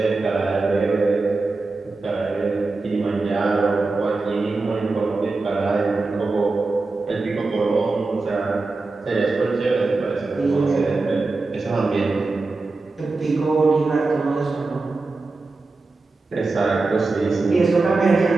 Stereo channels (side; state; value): left; quieter; 3.6 dB